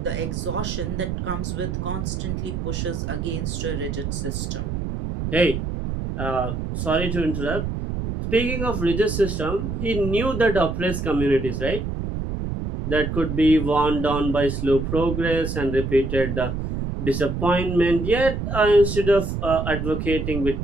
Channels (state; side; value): noise; right; rumble, 3 dB below the sound